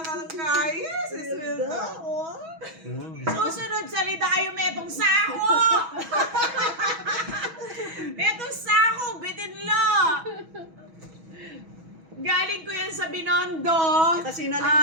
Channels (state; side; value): late; left; 6.2 ms